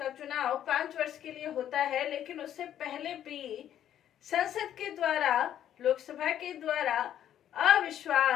चुनाव 5 वर्ष के लिए होता है, लेकिन उससे पहले भी संसद के द्वारा, लोकसभा के द्वारा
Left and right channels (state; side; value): quieter; right; 10.7 dB